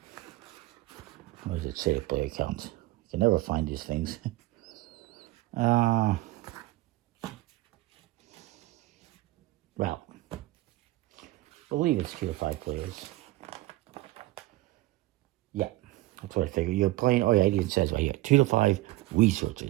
what does it say to player count? You can never find these things. Well, I believe it's 2 to 5 players. Yeah, that's what I figured. You're playing, oh yeah, it even says right here, 2 to 5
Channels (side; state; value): left; quieter; 18.2 dB